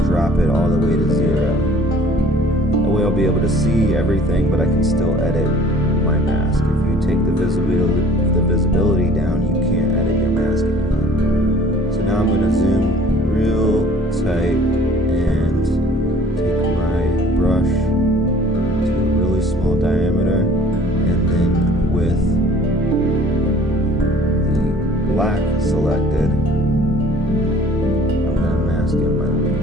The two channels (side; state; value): both; normal; correlation 0.51